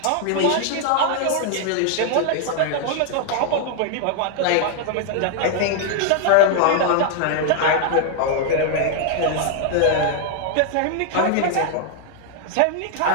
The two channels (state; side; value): different; both; correlation 0.00